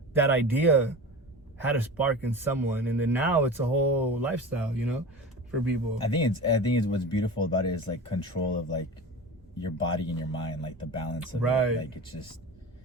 that idea had a spark in someone, and then now it's a whole lifestyle, you know, for people. I think it's what's beautiful about it is like control of like your body and your mind, like the balance of it. Like, it's just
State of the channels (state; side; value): normal; both; correlation 0.32